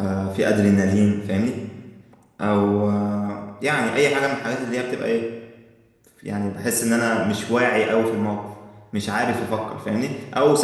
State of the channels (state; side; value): identical; both; correlation 1.00